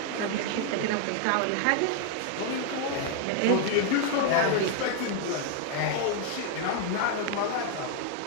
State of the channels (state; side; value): different; both; correlation 0.00